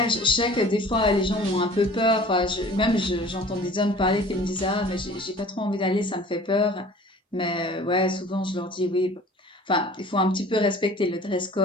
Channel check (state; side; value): normal; both; correlation 0.46